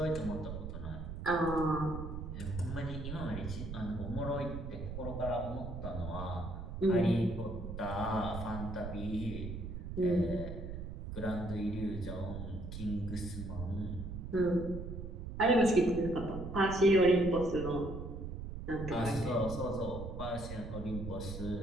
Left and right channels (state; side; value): noise; right; rumble, 7 dB below the sound